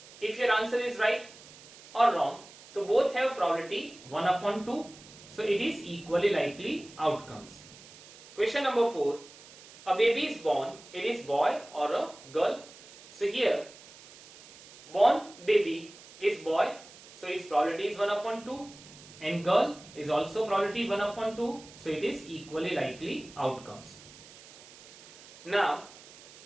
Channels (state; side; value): noise; right; hiss, 20 dB below the sound